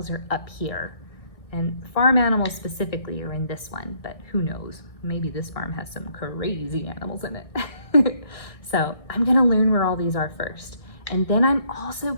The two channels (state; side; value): late; right; 1.6 ms